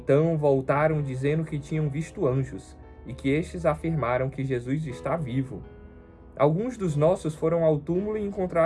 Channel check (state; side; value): identical; both; correlation 1.00